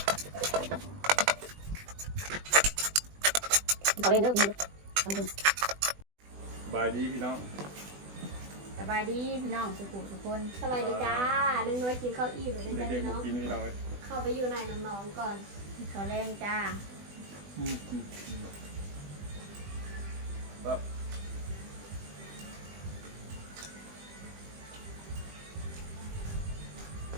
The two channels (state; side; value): late; left; 20 ms